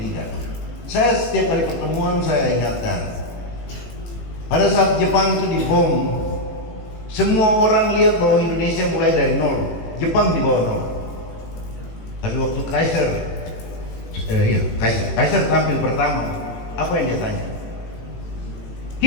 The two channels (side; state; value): right; late; 18 ms